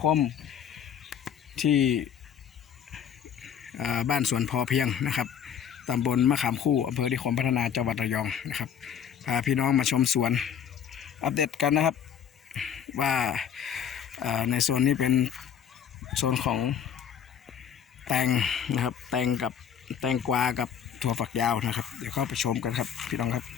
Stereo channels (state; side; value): quieter; right; 8.4 dB